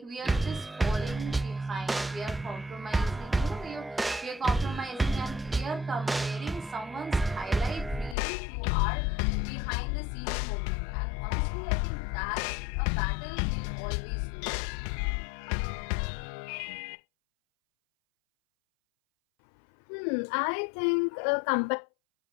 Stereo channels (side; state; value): right; drops out; at 8.2 s